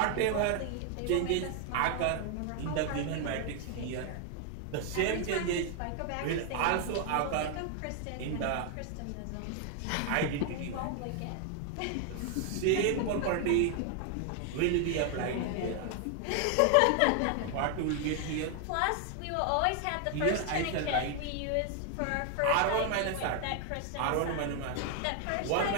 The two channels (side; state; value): both; different; correlation 0.00